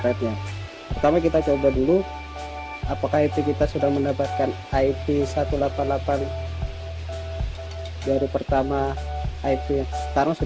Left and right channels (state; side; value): identical; both; correlation 1.00